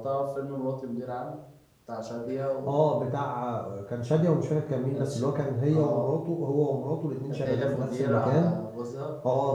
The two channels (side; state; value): both; identical; correlation 1.00